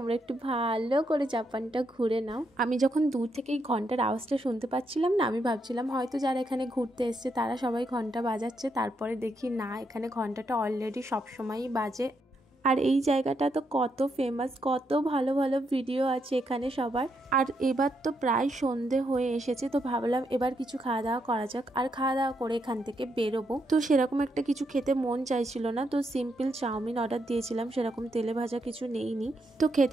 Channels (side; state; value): both; normal; correlation 0.79